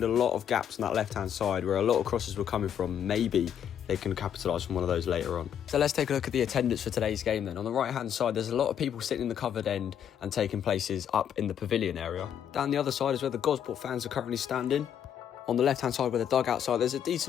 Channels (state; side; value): quieter; right; 9.1 dB